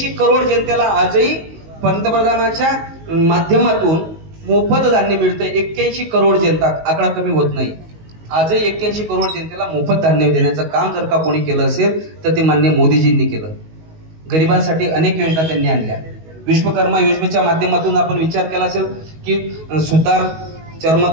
करोड जनतेला आजही पंतप्रधानाच्या माध्यमातून मोफत धान्य मिळतंय। 81 करोड जनता, आकडा कमी होत नाही। आजही 81 करोड जनतेला मोफत धान्य देण्याचं काम जर का कोणी केलं असेल तर ते माननीय मोदीजींनी केलं। गरिबांसाठी अनेक योजना त्यांनी आणल्या। विश्वकर्मा योजनेच्या माध्यमातून आपण विचार केला असेल की सुतार,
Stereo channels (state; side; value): late; left; 19 ms